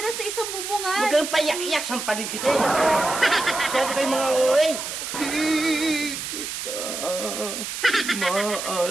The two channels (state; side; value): noise; right; hiss, 6 dB below the sound